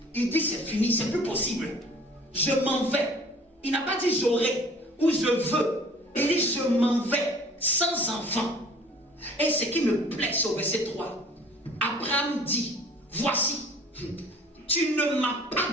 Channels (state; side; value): normal; both; correlation 0.50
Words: il dit, c'est fini, c'est plus possible. Je m'en vais. Il n'a pas dit j'aurai ou je veux. Il dit, je m'en vais sans enfant. Et ce qui me plaît, c'est au verset 3. Abraham dit, voici, tu ne m'as